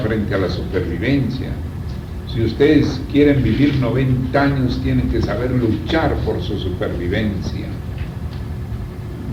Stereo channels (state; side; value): identical; both; correlation 1.00